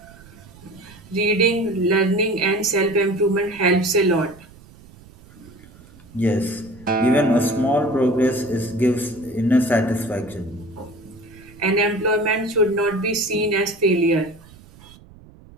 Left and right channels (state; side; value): noise; right; rumble, 23 dB below the sound